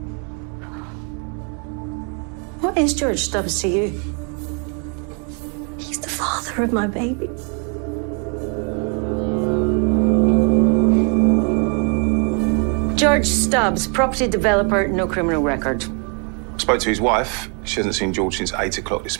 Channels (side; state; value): left; quieter; 37.4 dB